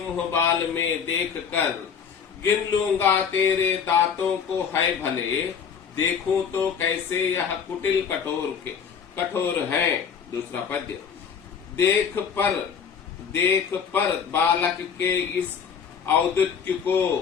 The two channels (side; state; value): right; quieter; 6.9 dB